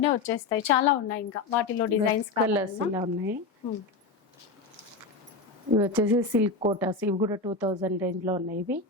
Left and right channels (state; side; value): quieter; right; 3.9 dB